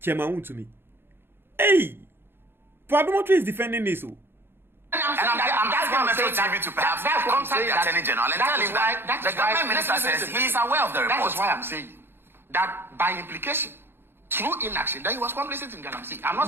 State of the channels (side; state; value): left; late; 0.11 ms